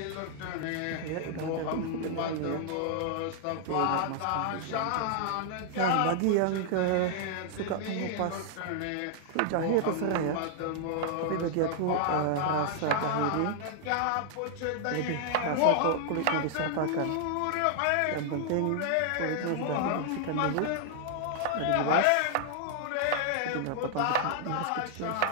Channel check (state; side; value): different; both; correlation -0.01